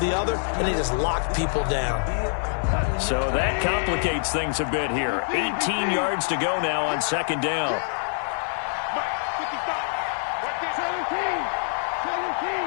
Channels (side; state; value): right; silent; digital silence